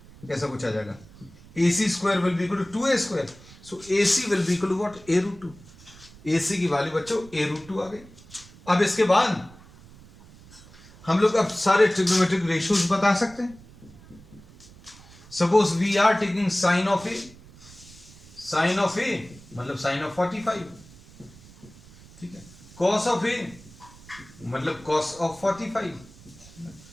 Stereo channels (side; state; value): right; noise; rumble, 22 dB below the sound